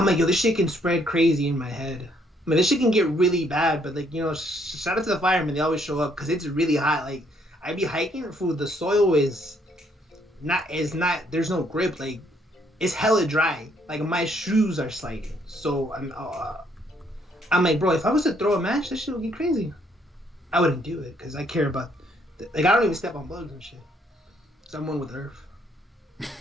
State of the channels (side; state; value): both; normal; correlation 0.68